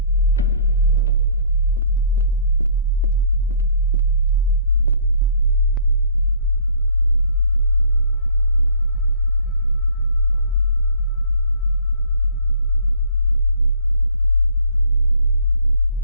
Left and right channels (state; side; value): inverted; both; correlation -0.55